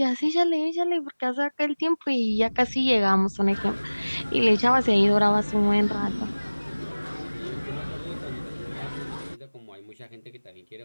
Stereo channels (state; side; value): inverted; both; correlation -1.00